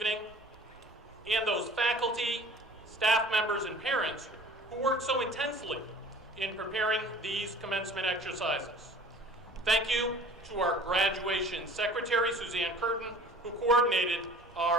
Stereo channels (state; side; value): normal; both; correlation 0.47